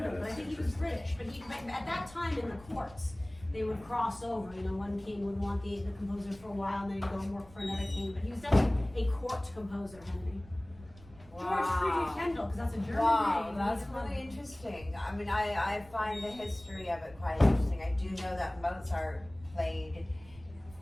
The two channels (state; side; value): noise; right; rumble, 21 dB below the sound